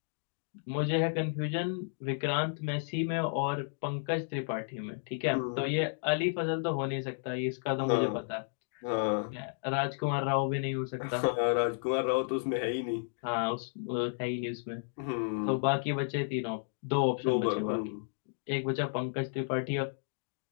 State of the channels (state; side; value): silent; right; digital silence